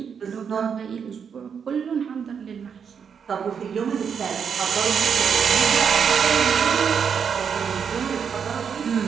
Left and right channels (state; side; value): quieter; left; 6.9 dB